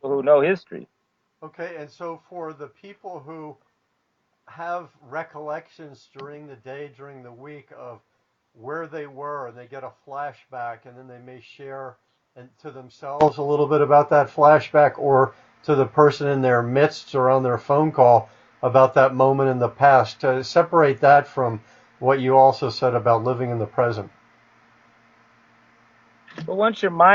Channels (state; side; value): identical; both; correlation 1.00